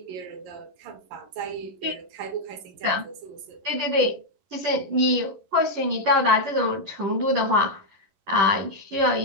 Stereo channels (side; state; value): left; late; 11 ms